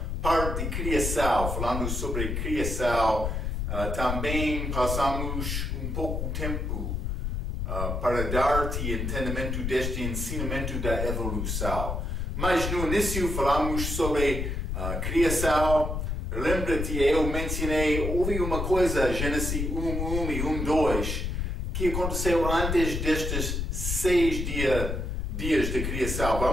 parte de criação, falando sobre criação. Também passamos um pouco de tempo para dar-te entendimento deste ensinamento da evolução. Mas no início falamos sobre criação. Lembra-te, eu mencionei, houve uma coisa, Gênesis 1:1 e 1:2, que aconteceu antes destes 6 dias de criação.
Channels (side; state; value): left; noise; rumble, 2 dB below the sound